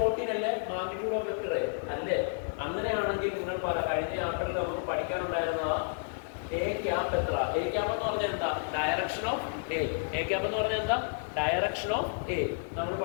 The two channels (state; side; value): silent; right; digital silence